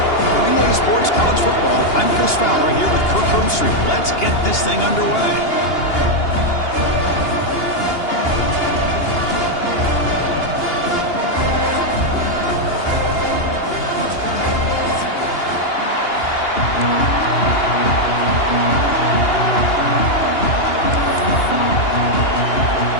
Relay Sports College Football, I'm Chris Fowler here with Kirk Herbstreit. Let's get this thing underway.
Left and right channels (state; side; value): late; right; 2.8 ms